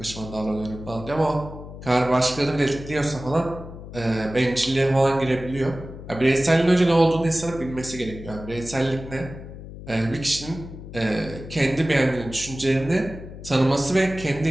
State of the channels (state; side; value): noise; left; hum, 13 dB below the sound